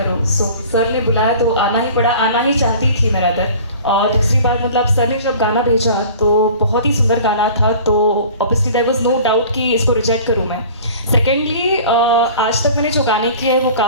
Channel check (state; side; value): inverted; both; correlation -0.44